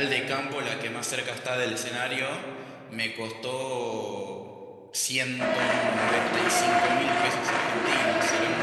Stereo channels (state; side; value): identical; both; correlation 1.00